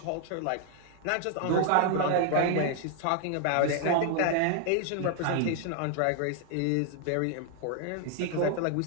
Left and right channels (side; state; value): both; different; correlation 0.00